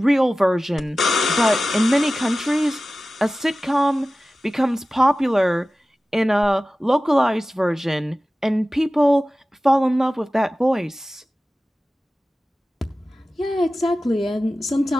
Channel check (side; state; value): both; normal; correlation 0.96